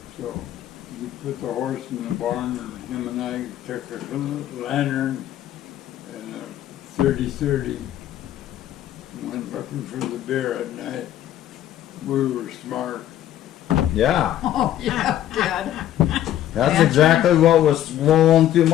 So he put the horse in the barn, and him and I took a little lantern and a 30-30 and went looking for the bear at night. We were smart. Yeah. Oh, yeah, Dad. That's exactly what was rolling through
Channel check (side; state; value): right; quieter; 12.1 dB